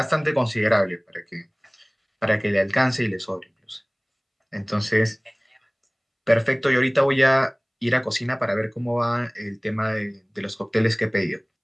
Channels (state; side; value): identical; both; correlation 1.00